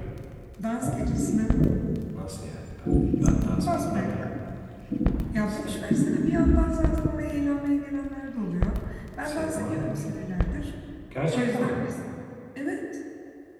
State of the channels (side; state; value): both; identical; correlation 1.00